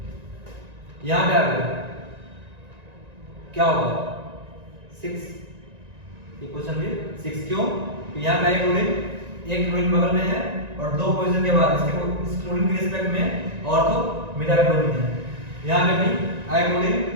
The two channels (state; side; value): late; left; 1.9 ms